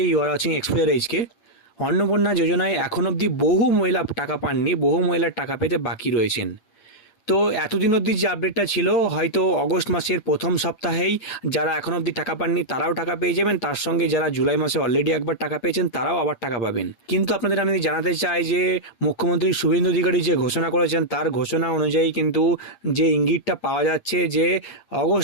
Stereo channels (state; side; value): late; right; 8.8 ms